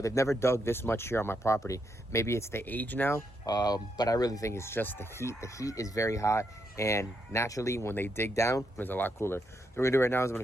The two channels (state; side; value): normal; both; correlation 0.80